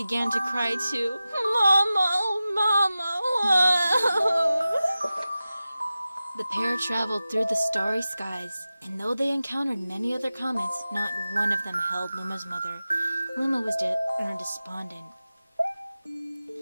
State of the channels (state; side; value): inverted; both; correlation -0.95